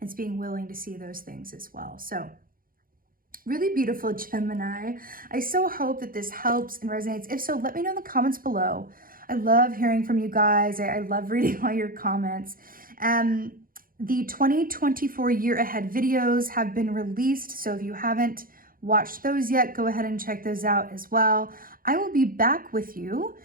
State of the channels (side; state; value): left; late; 0.41 ms